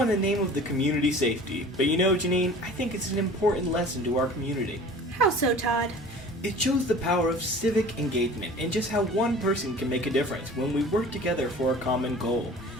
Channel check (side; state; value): both; normal; correlation 0.43